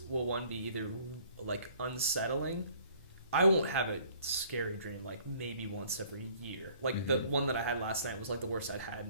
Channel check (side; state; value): both; inverted; correlation -0.56